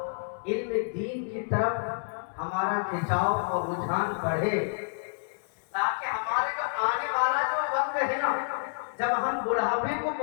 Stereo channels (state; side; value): silent; right; 59 dB below the other